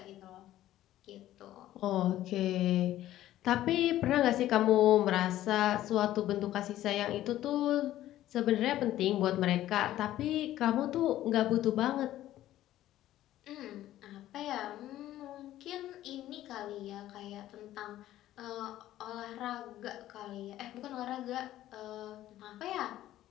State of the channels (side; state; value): right; quieter; 13.7 dB